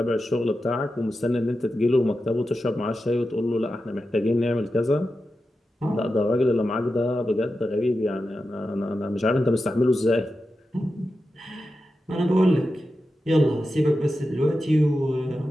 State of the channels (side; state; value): both; normal; correlation 0.91